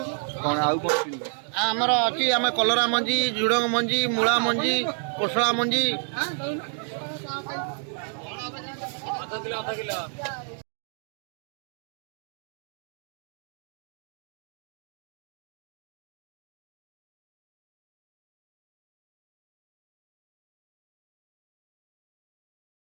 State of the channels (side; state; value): left; silent; 58 dB below the other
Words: कौन आमर अच्छी आम कलरा मंजी झुड़ंग मंजी मूला मंजी कोसला मंजी